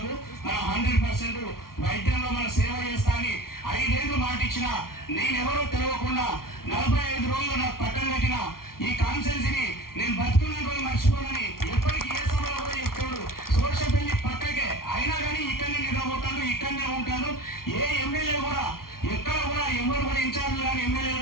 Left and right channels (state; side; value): late; right; 0.93 ms